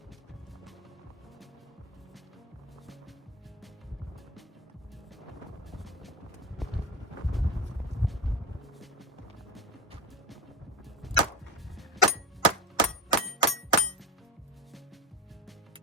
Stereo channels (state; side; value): normal; both; correlation 0.26